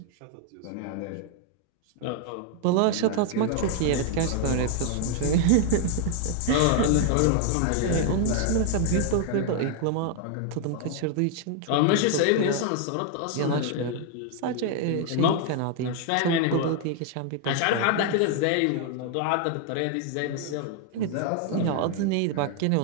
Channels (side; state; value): both; different; correlation 0.00